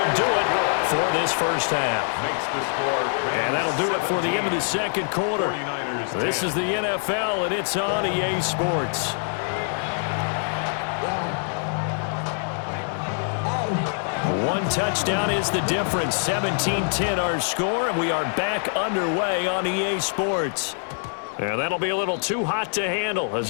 do it for this first half. Makes the score. And that'll do it for the end of the second quarter. 49ers This is the NFL, and it's on EA Sports. One touchdown is the difference. 17-10 our score, and we are back underway on EA Sports. And that'll be a little too hot to handle as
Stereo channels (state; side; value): silent; right; 58 dB below the other